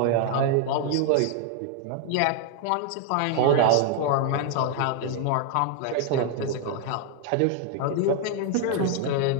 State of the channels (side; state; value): both; different; correlation 0.00